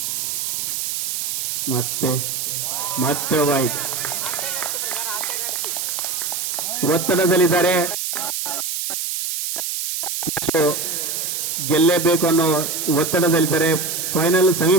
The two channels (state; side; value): noise; right; hiss, 2 dB below the sound